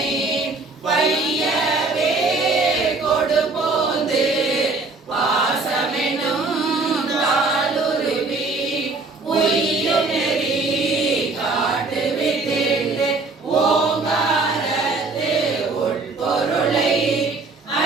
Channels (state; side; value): quieter; left; 3.7 dB